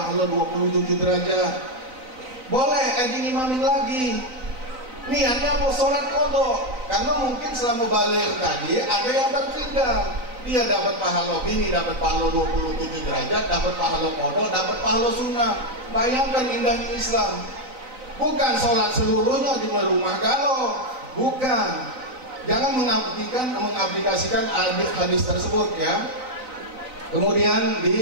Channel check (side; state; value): left; late; 4.0 ms